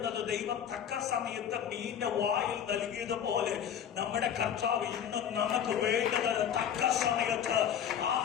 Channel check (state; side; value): quieter; right; 8.9 dB